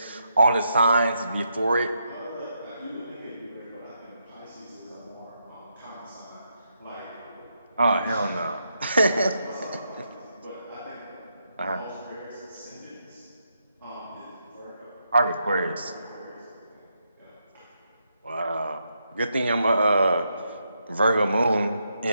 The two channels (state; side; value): inverted; both; correlation -0.81